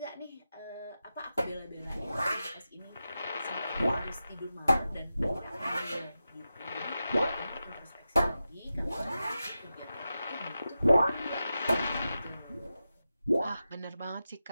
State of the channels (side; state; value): both; inverted; correlation -0.91